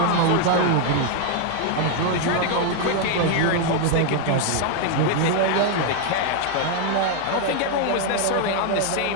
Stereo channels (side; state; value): both; different; correlation 0.00